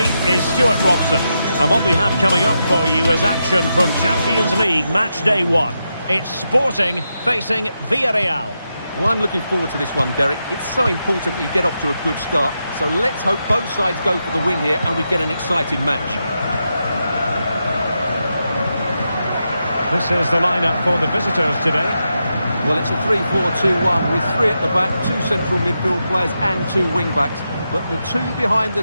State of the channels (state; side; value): inverted; both; correlation -0.86